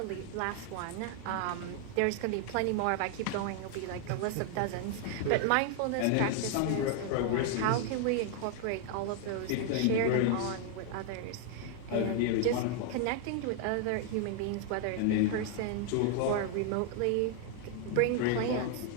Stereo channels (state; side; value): different; both; correlation 0.00